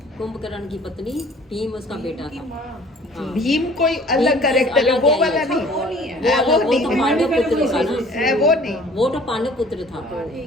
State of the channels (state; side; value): normal; both; correlation 0.51